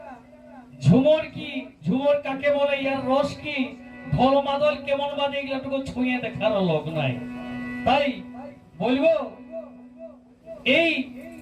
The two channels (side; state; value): both; identical; correlation 1.00